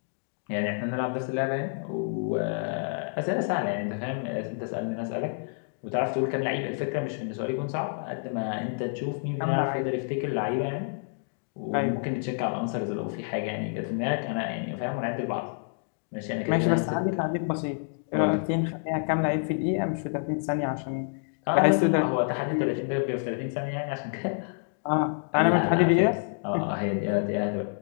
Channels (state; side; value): silent; right; digital silence